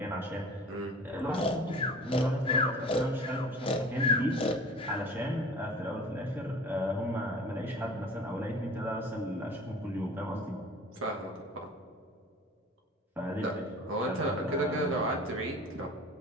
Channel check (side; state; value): both; normal; correlation 0.42